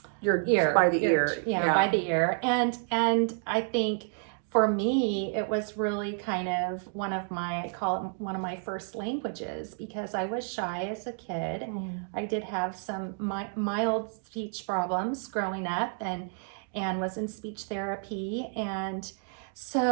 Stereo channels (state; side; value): silent; left; 58 dB below the other